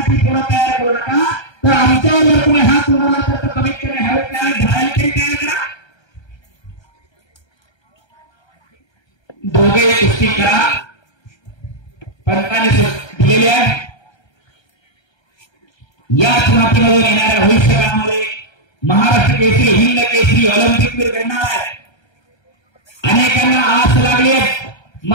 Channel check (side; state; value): right; late; 1.3 ms